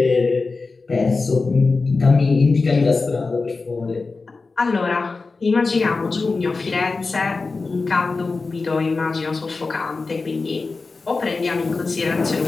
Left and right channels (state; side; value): quieter; right; 4.0 dB